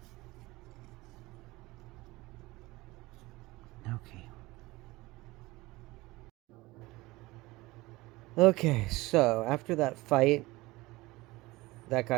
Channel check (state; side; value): quieter; left; 20.6 dB